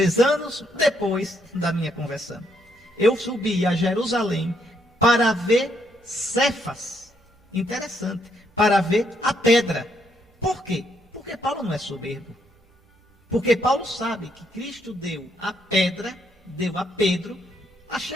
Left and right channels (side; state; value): both; normal; correlation 0.74